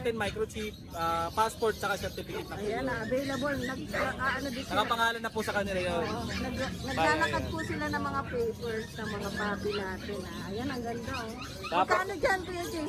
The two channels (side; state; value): both; identical; correlation 1.00